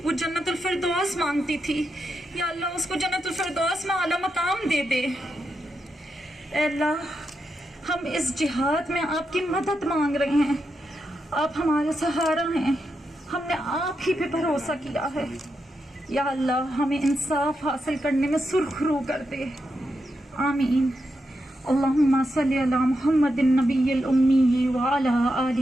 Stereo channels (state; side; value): normal; both; correlation 0.85